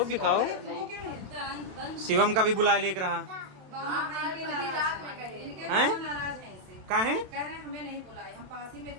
भी खाओ। शिवम का भी बुला लेकर रहा हैं? कहाँ है? कह रहे हैं हमें नहीं बुलाए, हम पास ही में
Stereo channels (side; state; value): left; late; 27 ms